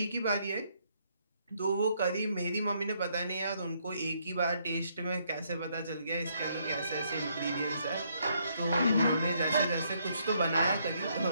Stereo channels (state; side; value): inverted; both; correlation -0.72